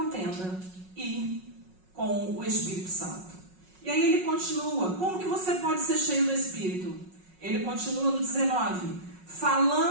e com o Espírito Santo. E aí ele continua. Como que você pode ser cheio do Espírito? Ele continua no 19.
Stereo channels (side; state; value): left; late; 5.4 ms